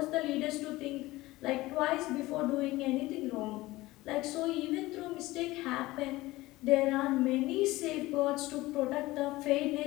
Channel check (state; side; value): quieter; right; 18.9 dB